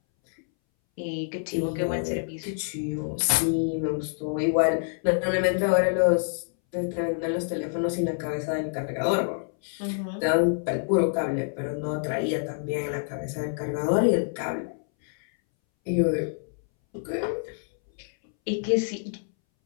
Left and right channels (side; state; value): right; silent; 60 dB below the other